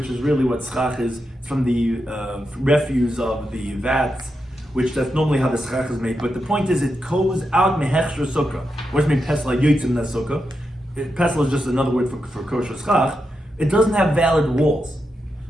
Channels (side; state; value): both; normal; correlation 0.86